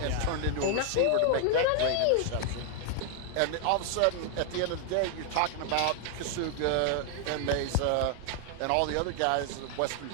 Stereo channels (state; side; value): different; both; correlation 0.00